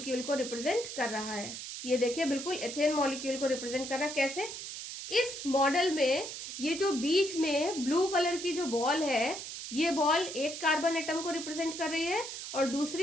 को रिप्रेजेंट कर रहा है। ये देखिए बिल्कुल एथेन मॉलिक्यूल को रिप्रेजेंट कर रहा है। कैसे? इस मॉडल में ये जो बीच में ब्लू कलर की जो बॉल है ये बॉल एक कार्बन एटम को रिप्रेजेंट कर रही है और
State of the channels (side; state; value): right; noise; hiss, 8 dB below the sound